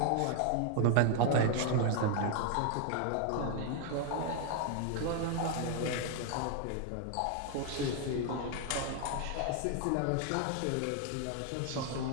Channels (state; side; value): different; both; correlation 0.00